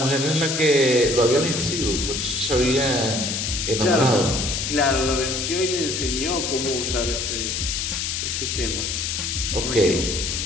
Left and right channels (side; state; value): left; noise; hiss, 2 dB below the sound